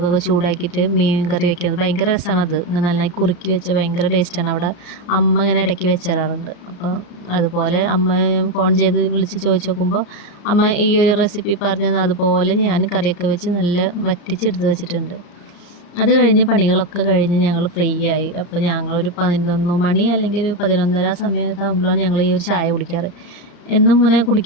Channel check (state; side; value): late; right; 34 ms